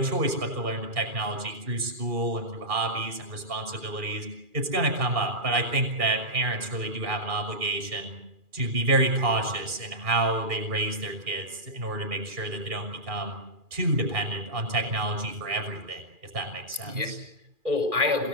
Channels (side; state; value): left; late; 2.4 ms